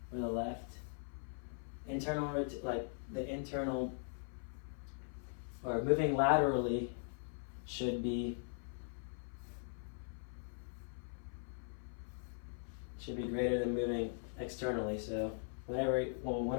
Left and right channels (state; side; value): silent; right; 51 dB below the other